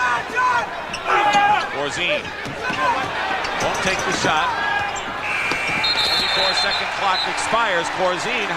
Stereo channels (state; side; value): identical; both; correlation 1.00